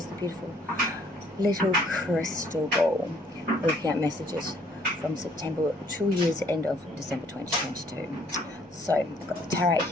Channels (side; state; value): both; normal; correlation 0.62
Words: the beautiful little crystal ball. Looking at messages from September to year's end of December 2022. So I've got the tarot